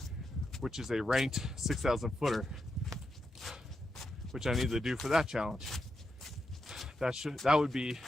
which is a ranked 6,000 footer, which I need to do for that challenge. That would be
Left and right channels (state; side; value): normal; both; correlation 0.86